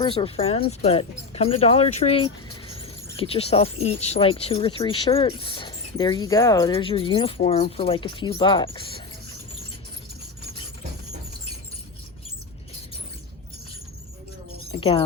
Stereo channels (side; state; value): right; quieter; 4.3 dB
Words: or friends, but come to Dollar Tree, get yourself each like 2 or 3 shirts. There you go. There's your uniform for like a few bucks.